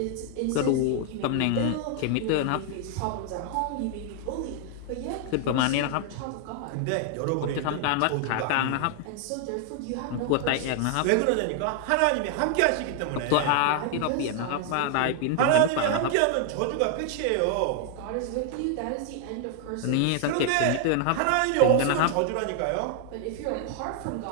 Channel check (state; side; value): different; both; correlation 0.00